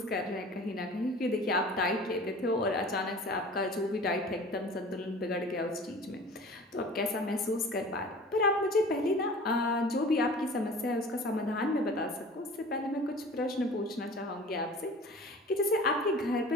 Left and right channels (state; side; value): normal; both; correlation 0.42